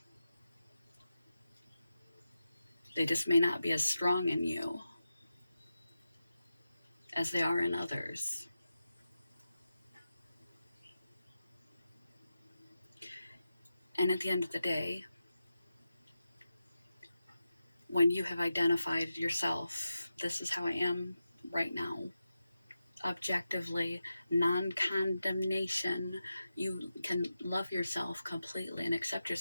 They just may not be as strong in you as they are in others. And at the end of the day, when you have identified yourself, this is how I am right now, objectively, non-condemnation, you can love yourself completely and accept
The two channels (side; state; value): both; inverted; correlation -0.91